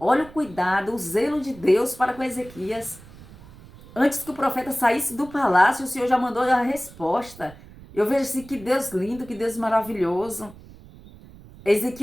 o cuidado, o zelo de Deus para com Ezequias. Antes que o profeta saísse do palácio, o Senhor já mandou a resposta. Eu vejo assim, que Deus lindo, que Deus maravilhoso.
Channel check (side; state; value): right; noise; rumble, 20 dB below the sound